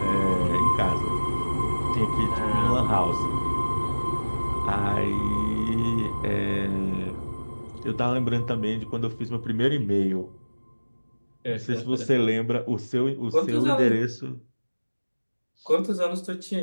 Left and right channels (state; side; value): inverted; both; correlation -1.00